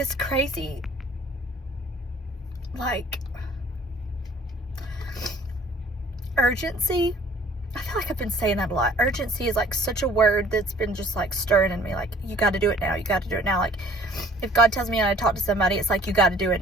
crazy, like, urgency. I feel like I've been saying that a lot. Urgency is like such a word that's been just like stirring in me. Like, you got to do it now. You got to do it now. Like, if God tells me I talk to somebody, it's like, you got to do it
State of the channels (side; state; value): both; normal; correlation 0.54